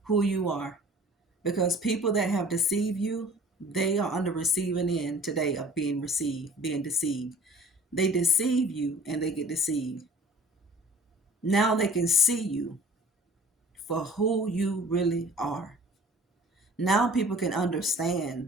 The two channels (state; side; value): normal; both; correlation 0.47